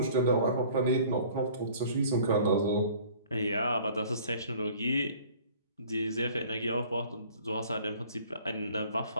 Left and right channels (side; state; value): both; inverted; correlation -0.51